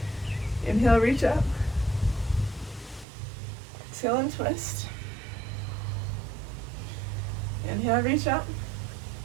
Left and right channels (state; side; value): drops out; left; at 3.1 s